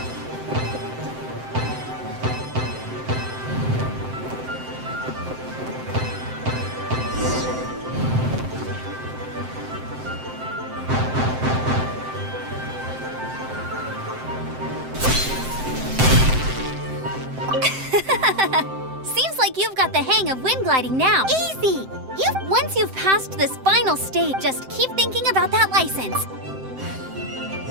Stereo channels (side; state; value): left; late; 7.7 ms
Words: Seems like you've got the hang of wind gliding now. Easy! Once you've passed this final stage, just keep thinking about that license.